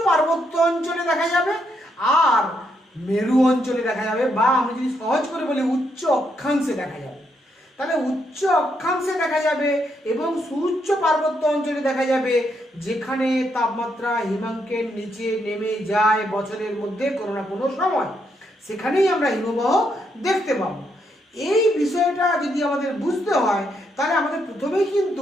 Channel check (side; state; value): both; normal; correlation 0.77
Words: পার্বত্য অঞ্চলে দেখা যাবে আর মেরু অঞ্চলে দেখা যাবে, বা আমি যদি সহজ করে বলি উচ্চ অক্ষাংশে দেখা যাবে। তাহলে উচ্চ অক্ষাংশে দেখা যাবে এবং সুউচ্চ পার্বত্য অঞ্চলে দেখা যাবে যেখানে তাপমাত্রা হিমাঙ্কের নিচে নেমে যায় বছরের মধ্যে কোনো না কোনো সময়, সেখানেই আমরা হিমবাহ দেখতে পাবো। এই বিষয়টা যদি আমাদের বুঝতে হয় তাহলে আমাদের প্রথমেই